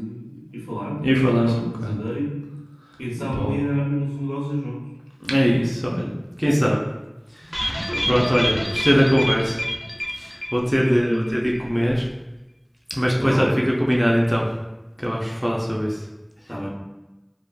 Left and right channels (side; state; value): both; identical; correlation 1.00